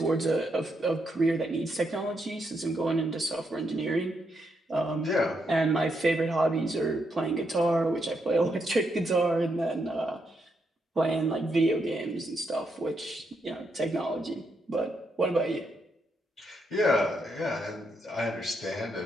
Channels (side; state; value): both; normal; correlation 0.79